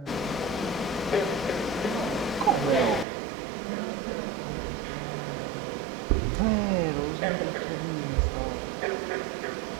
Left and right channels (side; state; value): left; drops out; at 3.1 s